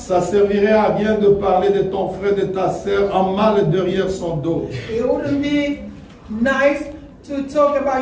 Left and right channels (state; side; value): identical; both; correlation 1.00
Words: servirait à rien de parler de ton frère, de ta sœur en mal derrière son dos. it wouldn't be nice to talk about